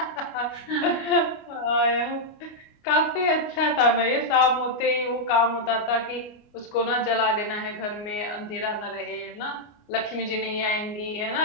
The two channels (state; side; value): late; right; 29 ms